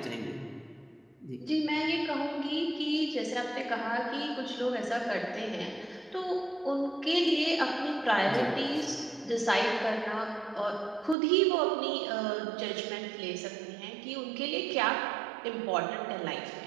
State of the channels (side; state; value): left; drops out; at 11.2 s